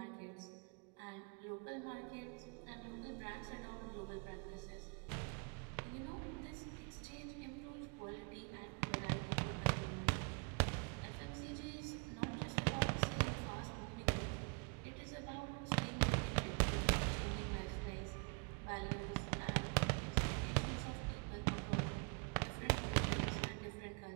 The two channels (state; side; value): quieter; left; 35.1 dB